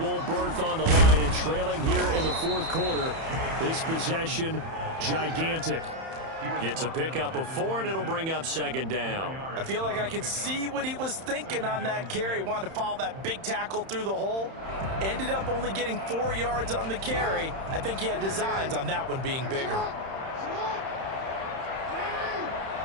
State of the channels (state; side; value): late; left; 31 ms